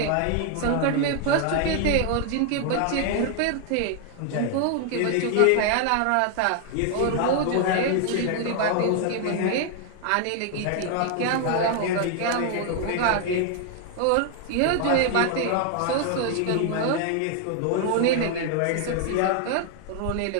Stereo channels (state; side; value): different; both; correlation 0.00